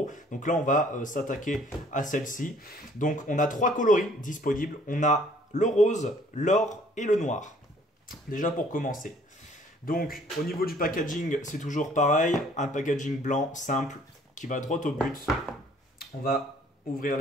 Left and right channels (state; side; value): normal; both; correlation 0.58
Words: Donc là, on va s'attaquer à celle-ci. Donc on a trois coloris disponibles. On a le rose, l'or et le noir. Déjà pour commencer. Donc au niveau du packaging, c'est toujours pareil, un packaging blanc simple qui va droit au but. On va ouvrir